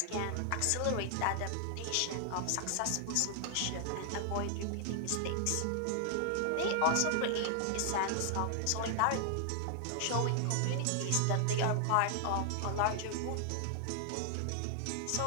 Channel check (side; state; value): both; different; correlation 0.00